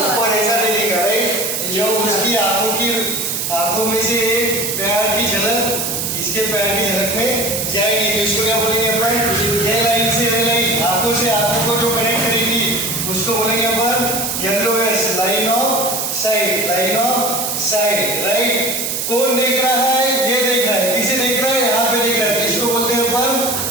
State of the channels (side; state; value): right; noise; hiss, 2 dB below the sound